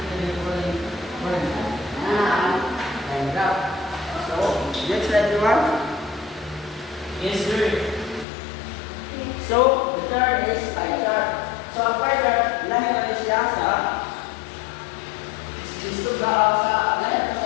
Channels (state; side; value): drops out; right; at 8.2 s